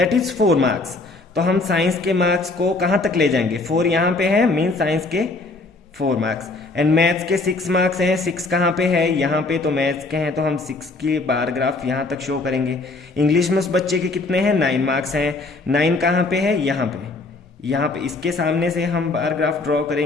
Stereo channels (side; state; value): right; quieter; 3.4 dB